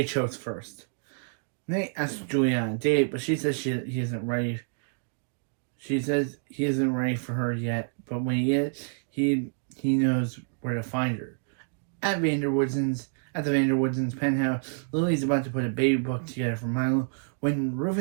chose first. Nate asks Julia on a date, but she says he isn't ready. She says he isn't ready for her yet, but when he is, he knows where to find her. At the Vanderwoodsons' penthouse, Lily's about to put a baby book together for Milo when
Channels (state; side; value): silent; left; digital silence